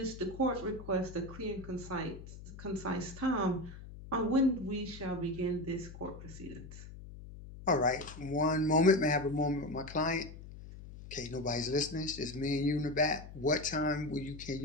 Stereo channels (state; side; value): noise; left; hum, 14 dB below the sound